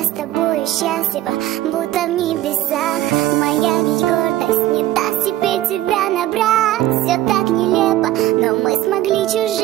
с тобой счастлива, будто в небесах. Моя ведь гордость не даст тебе тебя набрать. Все так нелепо, но мы смогли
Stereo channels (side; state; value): left; quieter; 14.4 dB